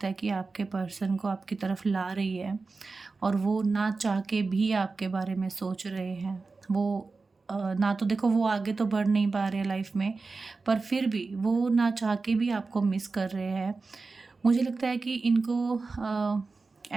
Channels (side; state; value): left; quieter; 4.0 dB